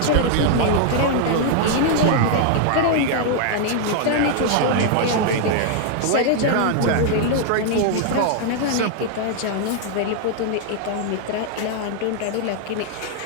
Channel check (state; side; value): different; both; correlation 0.00